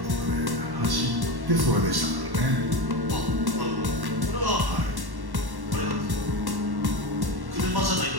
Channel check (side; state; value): left; late; 1.1 ms